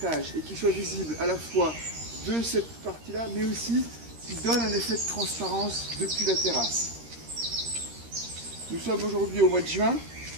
et qu'il soit visible à la fois de cette partie-là, mais aussi qu'il donne un effet de transparence depuis la terrasse. Nous sommes aujourd'hui au mois de juin,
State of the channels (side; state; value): left; late; 13 ms